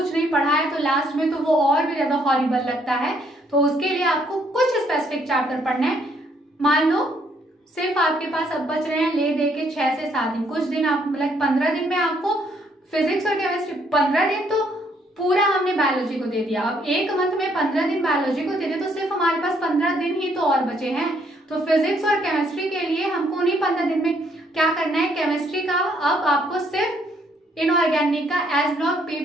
नहीं पढ़ा है तो लास्ट में तो वो और भी ज्यादा हॉरिबल लगता है, तो उसके लिए आपको कुछ स्पेसिफिक चैप्टर पढ़ना है। मान लो सिर्फ आपके पास अब बच रहे हैं ले दे के 6 से 7 दिन, कुछ दिन आप मतलब 15 दिन में आपको फिजिक्स और केमिस्ट्री, 15 दिन तो पूरा हमने बायोलॉजी को दे दिया। अब एक मंथ में 15 दिन बायोलॉजी को दे दे तो सिर्फ हमारे पास 15 दिन ही तो और बचे हैं। तो फिजिक्स और केमिस्ट्री के लिए हमको उन्हीं 15 दिन में क्या करना है, केमिस्ट्री का अब आपको सिर्फ इनऑर्गेनिक का S block, P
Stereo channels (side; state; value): both; normal; correlation 0.69